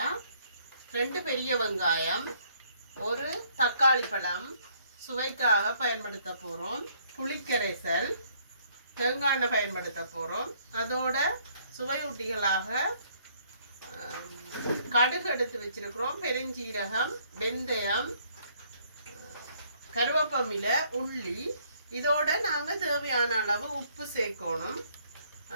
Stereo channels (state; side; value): inverted; both; correlation -0.65